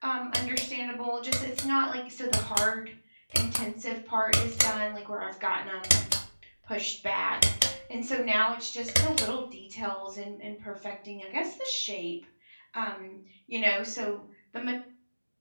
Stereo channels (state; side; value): inverted; both; correlation -1.00